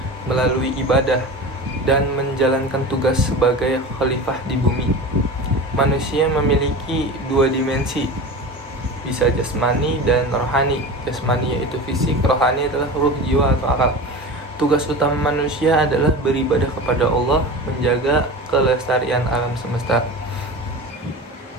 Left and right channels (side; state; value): both; normal; correlation 0.31